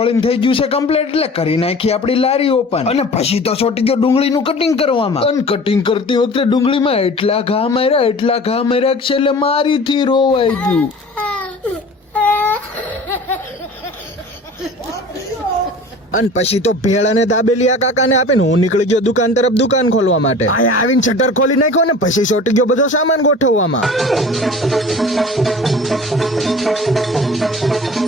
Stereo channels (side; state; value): both; normal; correlation 0.41